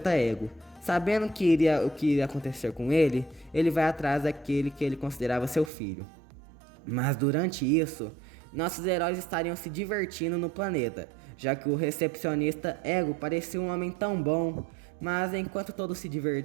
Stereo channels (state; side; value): drops out; left; at 5.7 s